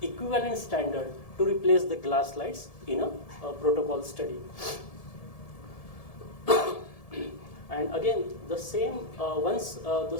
equivalent standard to replace the glass slides in a protocol study. And again, the same, once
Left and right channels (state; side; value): late; right; 1.7 ms